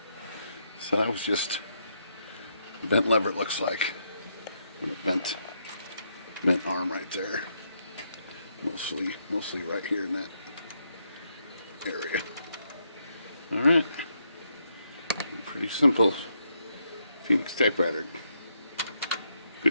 So that was just a bent lever, it looks like. And a bent arm right there. Mostly right here in that area. Alright. Pretty simple Phoenix typewriter.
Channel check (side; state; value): both; inverted; correlation -0.78